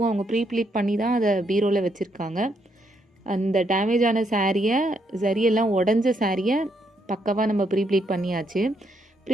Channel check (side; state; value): both; normal; correlation 0.75